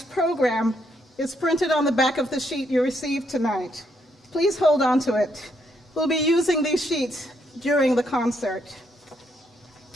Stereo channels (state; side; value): normal; both; correlation 0.75